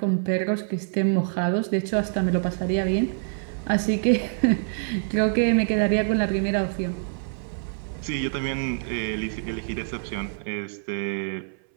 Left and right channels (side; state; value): left; silent; 61 dB below the other